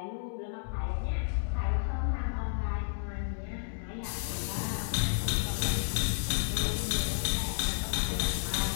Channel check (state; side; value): silent; right; 57 dB below the other